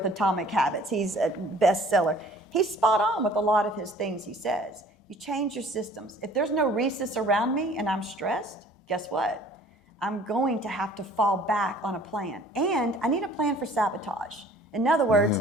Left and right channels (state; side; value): normal; both; correlation 0.52